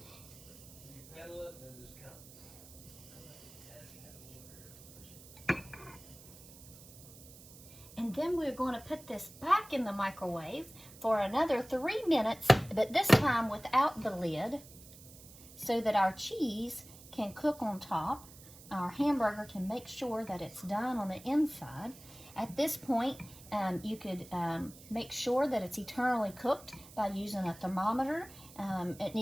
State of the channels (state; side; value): noise; right; hiss, 19 dB below the sound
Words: And then we're going to put this back in the microwave for another 3 minutes, but this time without the lid, so that our cheese can cook on top. Our hamburger can make sure that it's done on the inside. At this point, you could make sure that it's eternally cooked by using a thermometer. It